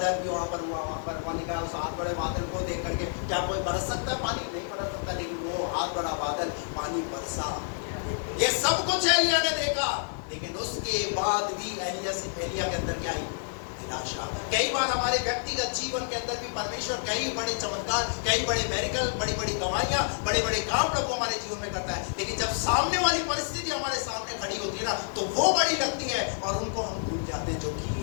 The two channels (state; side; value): silent; right; 59 dB below the other